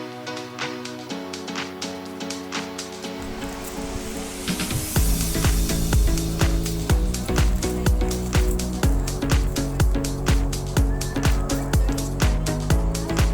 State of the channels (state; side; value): identical; both; correlation 1.00